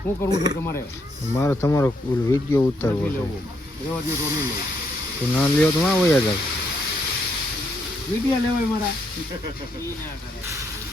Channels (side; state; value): both; normal; correlation 0.75